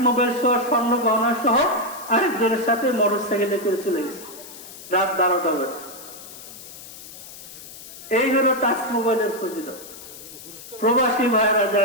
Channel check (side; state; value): left; noise; hiss, 15 dB below the sound